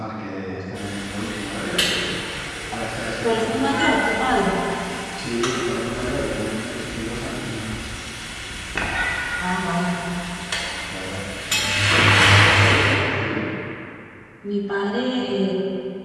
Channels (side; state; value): both; identical; correlation 1.00